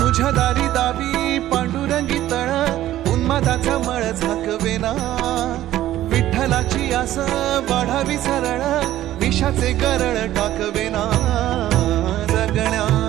तुझ्या दारी दावी पांडुरंगी तळ उन्मादाचा मळ झाकवेना विठ्ठलाची आस वाढावी सरळ विषाचे गरळ टाकवेना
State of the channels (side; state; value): left; quieter; 13.7 dB